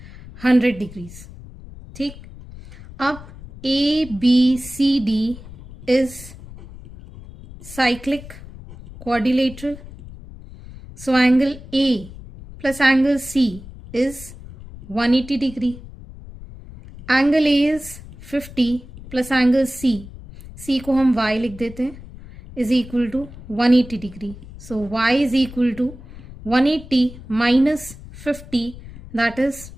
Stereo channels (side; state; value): left; noise; rumble, 16 dB below the sound